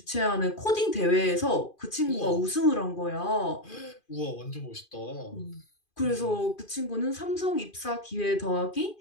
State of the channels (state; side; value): late; right; 2.4 ms